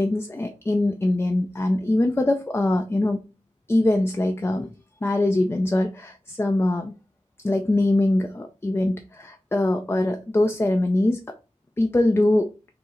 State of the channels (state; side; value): normal; both; correlation 0.96